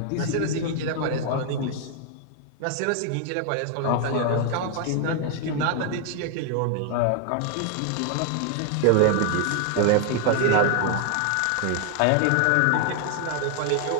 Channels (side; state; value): both; different; correlation 0.00